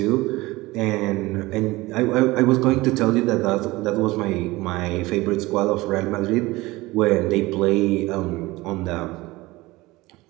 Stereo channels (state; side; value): quieter; left; 20.4 dB